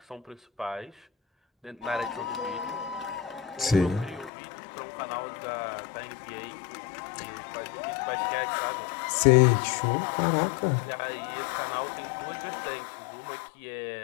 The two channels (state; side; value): drops out; right; at 4.3 s